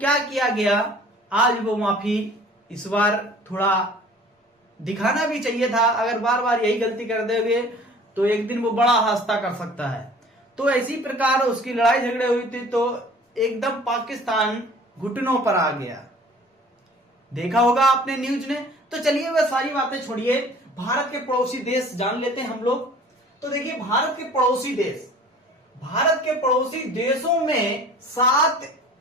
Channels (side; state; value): both; normal; correlation 0.48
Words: किया गया, आज वो माफी इस बार थोड़ा दिखाना भी चाहिए था। अगर बार बार यही गलती कर दोगे तो एक दिन वो बड़ा हादसा कर सकता है। तो इसी प्रकार उसकी लड़ाई झगड़े हुई थी, तो एकदम पाकिस्तान घुटनों पर आ गया। देखा होगा आपने न्यूज ने। तो चलिए वह सारी बातें छोड़िए, भारत के पड़ोसी देश जान लेते हैं हम लोग। तो देखिए भारत के पड़ोसी देश, भारत के पड़ोसी देशों में 7